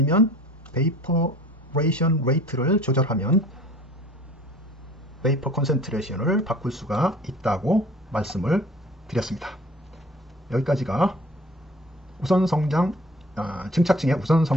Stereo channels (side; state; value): both; normal; correlation 0.48